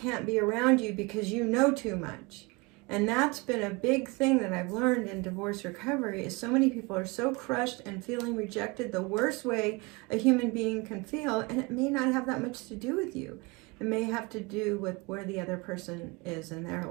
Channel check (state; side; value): quieter; left; 26.4 dB